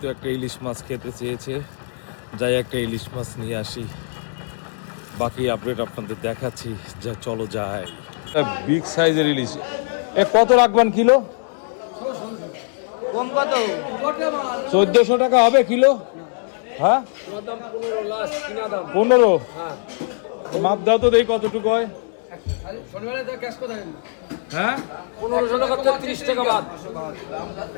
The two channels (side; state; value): right; silent; digital silence